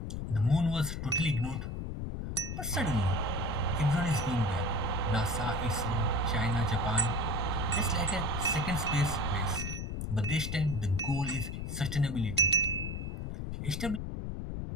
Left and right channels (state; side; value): noise; left; rumble, 4 dB below the sound